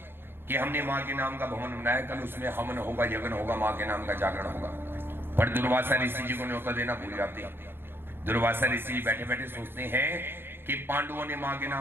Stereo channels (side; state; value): left; late; 0.10 ms